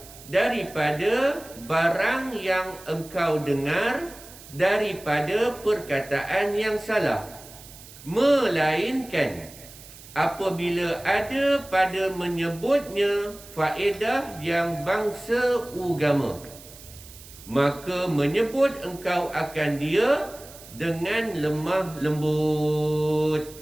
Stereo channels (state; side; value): noise; right; hiss, 19 dB below the sound